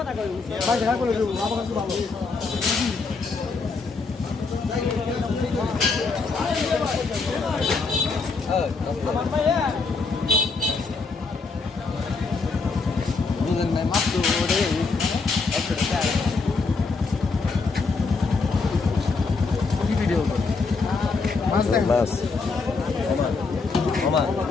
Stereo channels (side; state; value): right; quieter; 4.3 dB